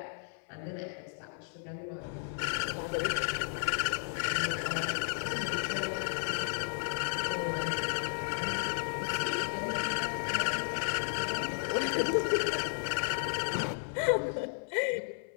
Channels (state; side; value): silent; right; 56 dB below the other